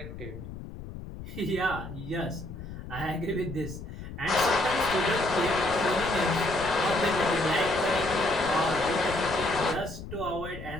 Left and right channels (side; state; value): left; noise; rumble, 11 dB below the sound